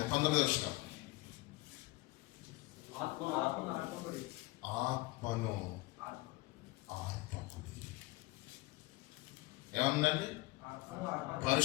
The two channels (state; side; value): quieter; right; 20.8 dB